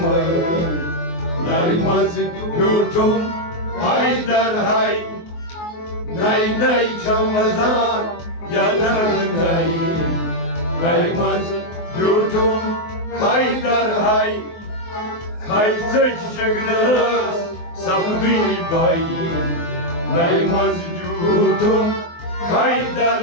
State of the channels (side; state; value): right; late; 24 ms